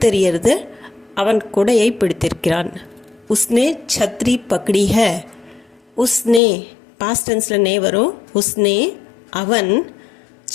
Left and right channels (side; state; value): right; drops out; at 6.4 s